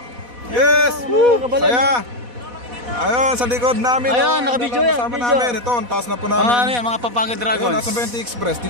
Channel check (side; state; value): left; late; 4.1 ms